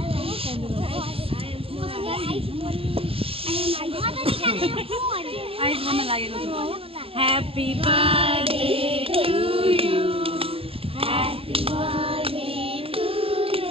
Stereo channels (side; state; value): left; late; 0.27 ms